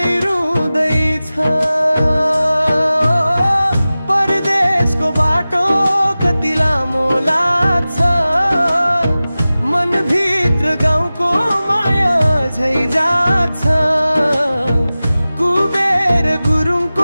रुँदैछ। परदेशको बाटो कति लामो लाग्छ, मनभित्र गाउँको माया झै जाग्छ। कुबेर गुरुङको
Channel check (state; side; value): inverted; both; correlation -0.96